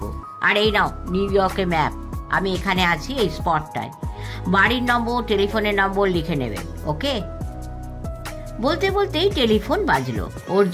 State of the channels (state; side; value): identical; both; correlation 1.00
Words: আর এই নাও নিউ ইয়র্কের ম্যাপ, আমি এখানে আছি এই স্পটটায়। বাড়ির নম্বর, টেলিফোনের নম্বর লিখে নেবেন, ওকে? বলতে বলতেই টেলিফোন বাজলো।